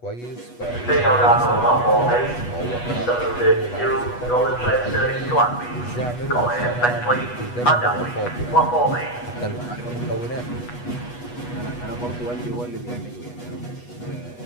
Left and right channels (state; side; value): late; right; 8.2 ms